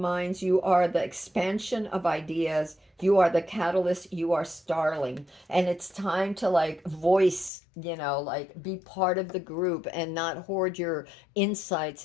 You are the expansion of ideas. You are the catalyst. You are starling. And it's time to like voice, like be part of the group and not hoard your insights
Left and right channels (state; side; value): drops out; right; at 7.5 s